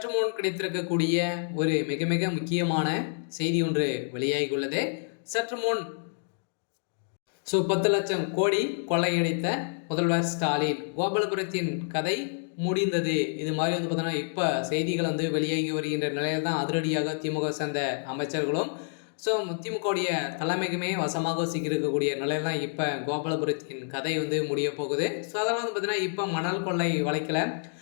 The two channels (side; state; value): right; silent; digital silence